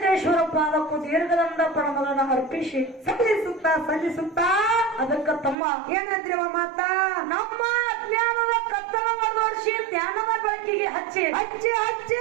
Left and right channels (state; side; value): drops out; left; at 5.6 s